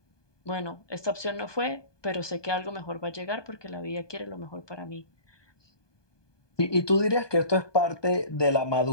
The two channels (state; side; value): late; right; 1.2 ms